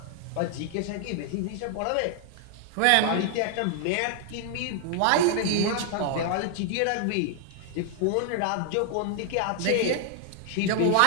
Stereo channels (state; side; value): different; both; correlation 0.00